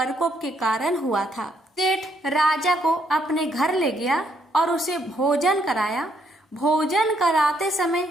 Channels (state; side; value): normal; both; correlation 0.72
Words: के कारण हुआ था। सेठ राजा को अपने घर ले गया और उसे भोजन कराया। भोजन कराते समय